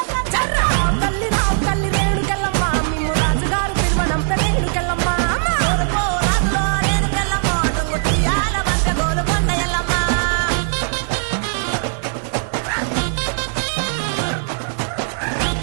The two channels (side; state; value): left; silent; 66 dB below the other